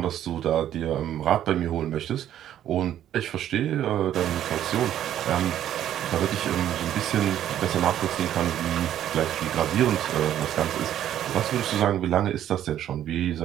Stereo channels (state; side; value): quieter; left; 11.2 dB